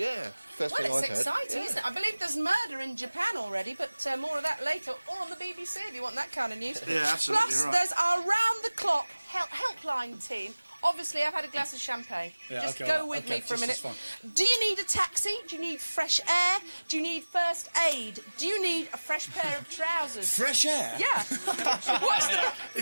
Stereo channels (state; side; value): inverted; both; correlation -1.00